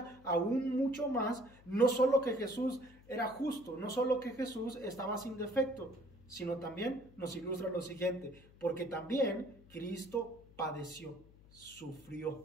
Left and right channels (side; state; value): left; noise; hum, 23 dB below the sound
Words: aún mucho más, no solo que Jesús era justo, no solo que Jesús estaba sin defecto, sino también nos ilustra lo siguiente, porque también Cristo padeció,